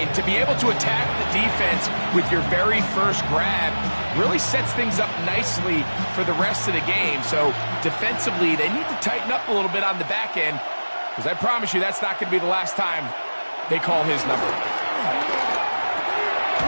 to be able to attack the defense with your very first grab really sets things up nicely for the rest of the game. So defensively, they need to tighten up a little bit on the back end, because I promise you that's not going to be the last time they call his number.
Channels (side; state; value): both; inverted; correlation -1.00